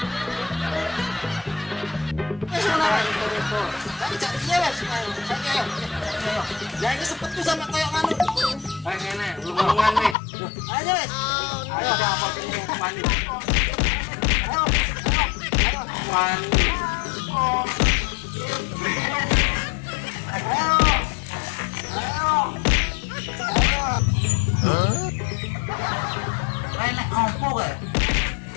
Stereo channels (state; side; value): drops out; right; at 10.2 s